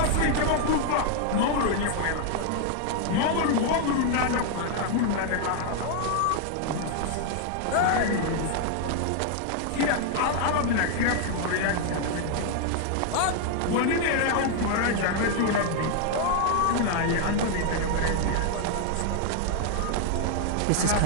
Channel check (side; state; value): both; different; correlation 0.00